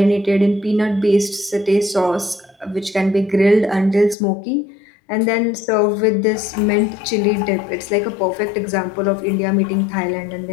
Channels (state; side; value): drops out; right; at 4.2 s